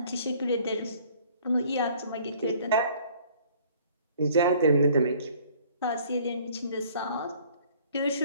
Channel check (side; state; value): both; inverted; correlation -0.56